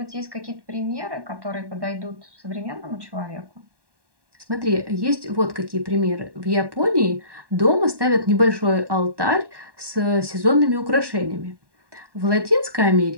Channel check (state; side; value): late; left; 1.1 ms